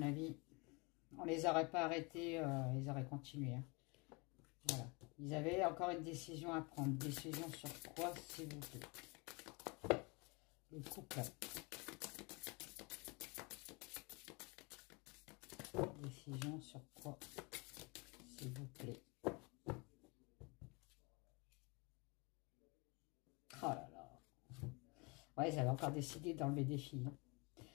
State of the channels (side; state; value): right; quieter; 28.9 dB